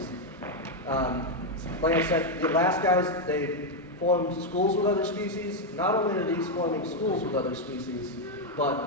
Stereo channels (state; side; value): normal; both; correlation 0.02